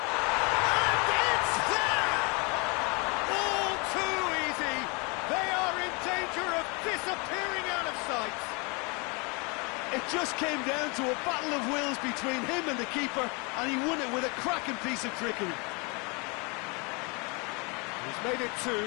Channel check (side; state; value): right; quieter; 30.5 dB